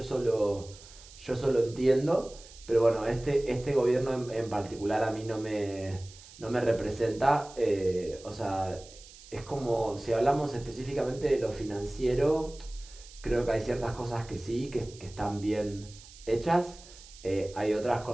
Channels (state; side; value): noise; right; hiss, 20 dB below the sound